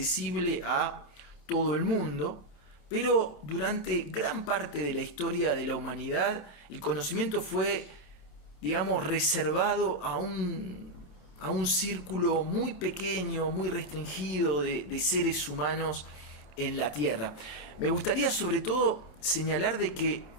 a todo el mundo, pero durante gran parte de la historia de la humanidad el conocimiento fue, digamos, reservado a un círculo muy pequeño, muy restringido de seres humanos en la Tierra. Me gustaría sobre todo señalar de que,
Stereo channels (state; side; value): late; right; 27 ms